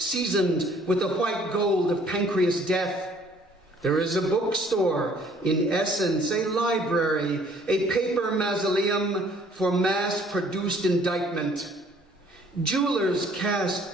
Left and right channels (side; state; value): both; normal; correlation 0.58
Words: seasoned with the white gold of pancreas death. There is a bookstore, in essence a library, a paper mausoleum for mass-produced indictment. Jewelers